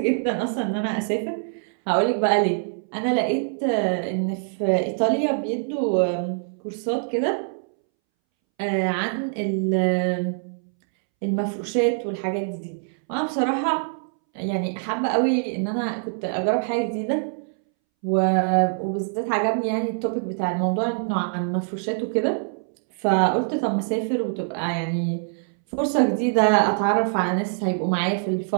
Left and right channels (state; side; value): silent; left; 63 dB below the other